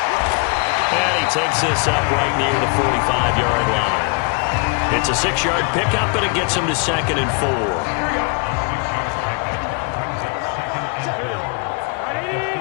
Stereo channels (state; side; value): quieter; right; 34.3 dB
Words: And he takes this up right near the 45-yard line. It's a 6-yard pickup, and it gets him to 2nd and 4.